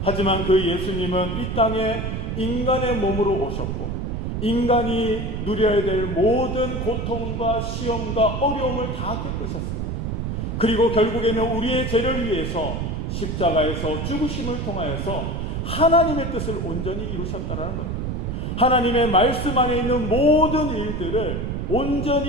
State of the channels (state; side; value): noise; right; rumble, 3 dB below the sound